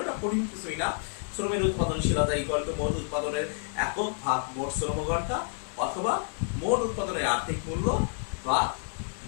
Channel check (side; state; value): right; silent; 58 dB below the other